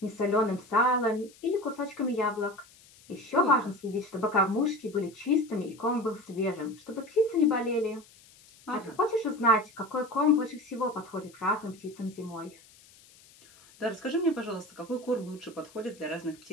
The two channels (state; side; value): noise; left; hiss, 25 dB below the sound